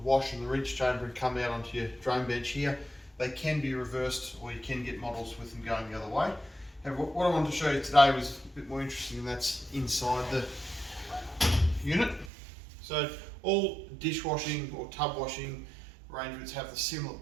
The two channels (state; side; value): drops out; left; at 12.3 s